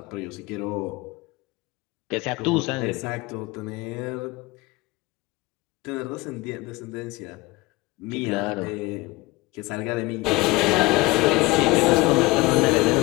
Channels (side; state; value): right; quieter; 22.2 dB